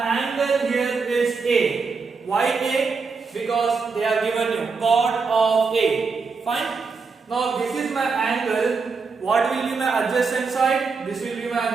here is A. Why A? Because they are given you cot of A. Fine? Now this is my angle. What will be my adjacent side? This will be my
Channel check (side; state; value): left; quieter; 4.8 dB